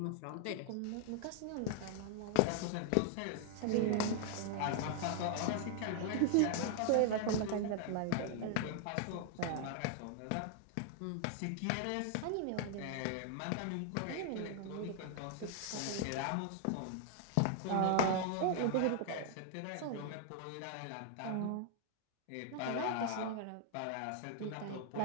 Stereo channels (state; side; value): different; both; correlation 0.00